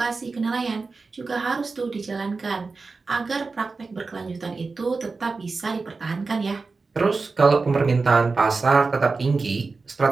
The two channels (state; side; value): quieter; left; 4.1 dB